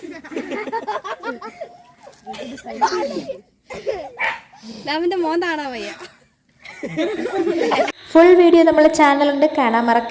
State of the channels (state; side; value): identical; both; correlation 1.00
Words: അവന്റെ മോൻ കാണാൻ വയ്യ. ഫുൾ വീഡിയോ നമ്മളെ ചാനലുണ്ട്, കാണാൻ